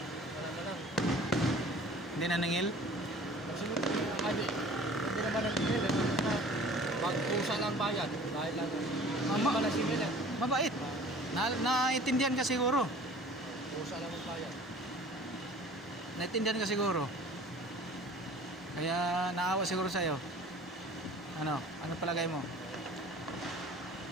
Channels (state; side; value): normal; both; correlation 0.46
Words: na lang. Hindi na nangil? Kasi hindi naman nag-email eh. Magpusa lang bayad. Dahil lang. Hindi naman nag-email eh. Mabait. Naintindihan ka siguro. Pusa lang ang bayad. Naintindihan ka siguro. Kaya naawa siguro sa'yo. Ano palagay mo?